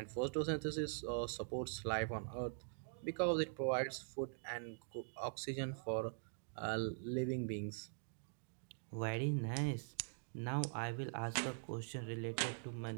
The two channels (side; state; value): left; silent; digital silence